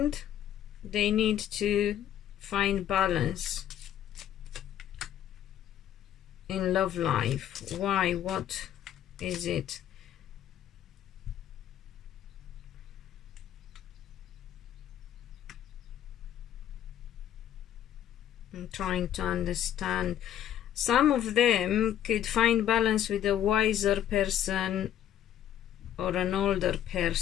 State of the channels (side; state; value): right; quieter; 10.8 dB